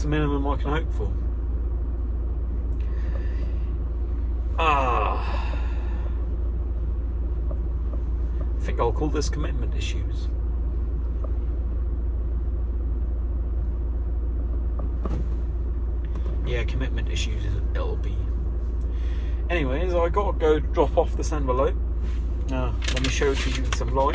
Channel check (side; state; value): both; identical; correlation 1.00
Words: the minimum I can hope for. I think I'll call this commitment issues. Yeah, commitment issues it'll be. Anyways, I gotta go drop off this envelope. Let me show it to you in some